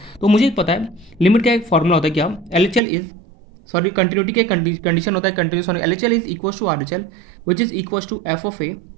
तो मुझे पता है लिमिट का एक फॉर्मूला होता है, क्या LHL इज सॉरी कंटिन्यूटी के कंडीशन होता है, कंटिन्यूस होने LHL is equal to RHL which is equal to f of a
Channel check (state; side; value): drops out; left; at 2.8 s